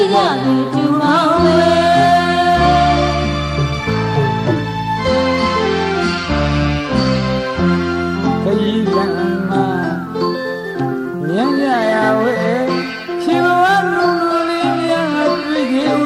ရသူတူမောင်းလေခရီးကံမှာမြန်းကြရဝဲရှင်ဘဝလူလူလေးများတွေ့ကြဥ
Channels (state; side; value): identical; both; correlation 1.00